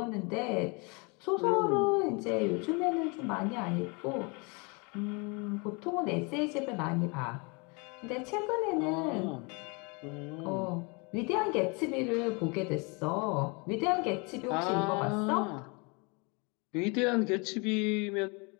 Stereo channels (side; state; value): right; quieter; 31.0 dB